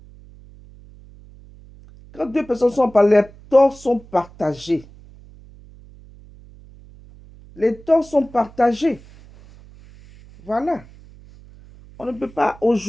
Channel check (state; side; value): noise; right; hum, 22 dB below the sound